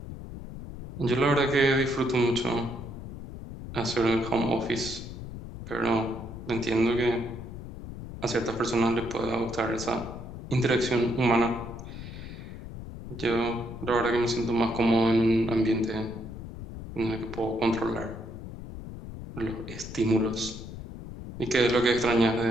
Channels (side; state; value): left; noise; rumble, 11 dB below the sound